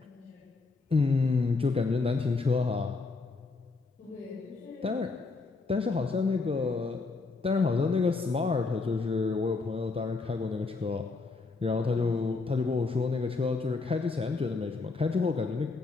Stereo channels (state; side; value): quieter; right; 4.0 dB